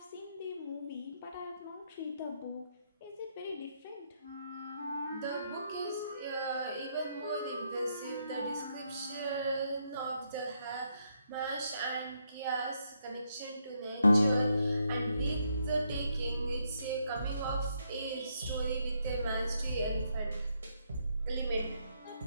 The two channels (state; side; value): inverted; both; correlation -0.76